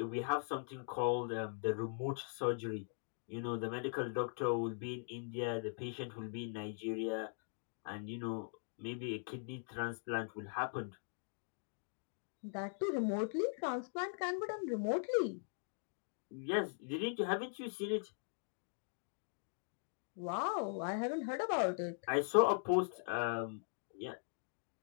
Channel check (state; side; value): silent; right; digital silence